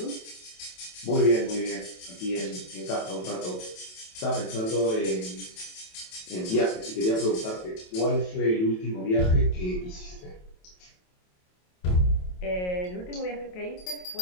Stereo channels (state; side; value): late; right; 28 ms